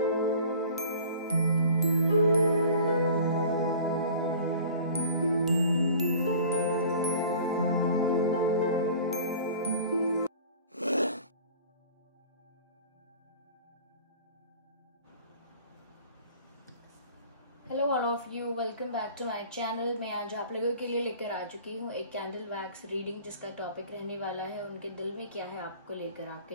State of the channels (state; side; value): inverted; both; correlation -0.46